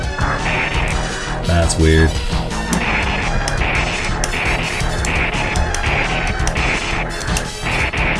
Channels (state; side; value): identical; both; correlation 1.00